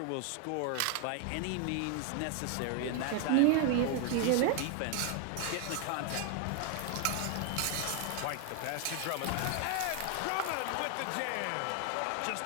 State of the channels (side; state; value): both; different; correlation 0.00